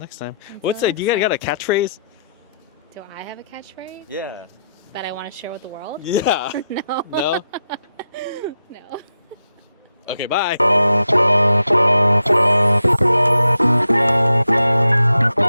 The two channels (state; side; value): inverted; both; correlation -0.84